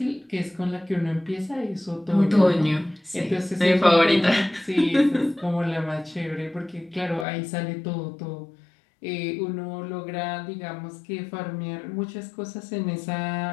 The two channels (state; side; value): drops out; right; at 7.2 s